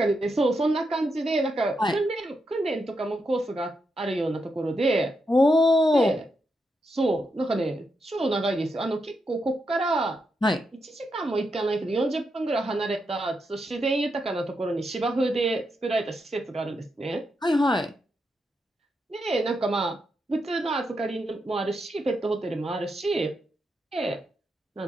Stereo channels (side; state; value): both; normal; correlation 0.83